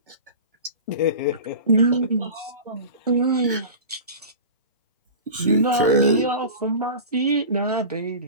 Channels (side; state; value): both; inverted; correlation -0.34